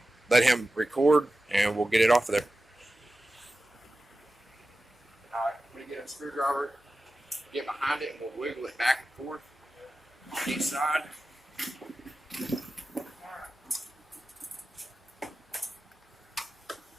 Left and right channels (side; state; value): both; normal; correlation 0.94